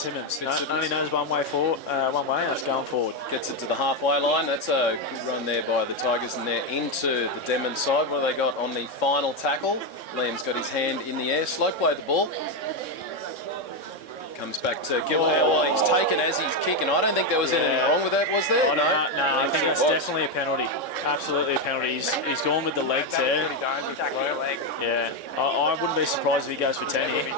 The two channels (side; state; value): right; late; 3.6 ms